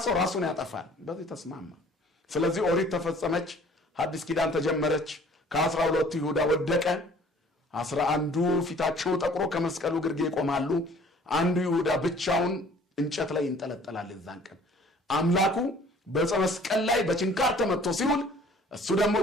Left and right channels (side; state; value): both; normal; correlation 0.53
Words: ሰው ራሱን ያጠፋል በዚህ ተስማማ ስለዚህ ኦሪት ተፈጸመች ሐዲስ ኪዳን ተጀመረች ከ12 ይሁዳ ወደቀ 11ዱ ፊታቸው ጠቁሮ ከመስቀሉ ግርጌ ይቆማሉ አንዱ ይሁዳ ብቻውን እንጨት ላይ ይንጠለጠላል እዛን ቀን አምላኩ በመስቀል ላይ በችንካር ተመቶ ሲውል እሱ ደግሞ